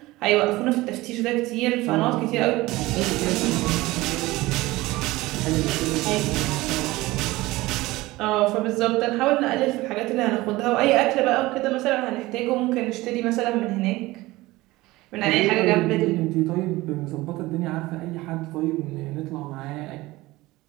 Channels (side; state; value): left; quieter; 19.4 dB